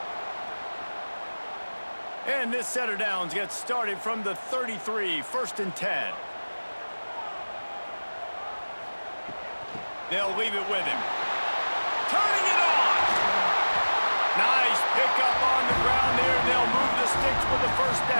And this set of downs gets started from the 33, 1st and 10. They'll leave it with him. Turning it on! Nice pickup on the ground there. They'll move the sticks for the 1st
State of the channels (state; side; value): inverted; both; correlation -1.00